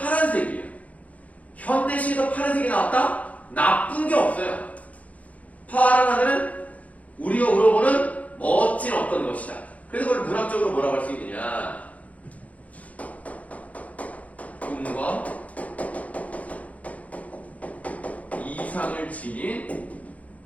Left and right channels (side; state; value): right; late; 0.069 ms